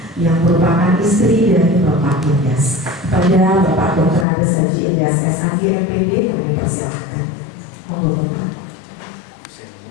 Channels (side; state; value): right; drops out; at 4.2 s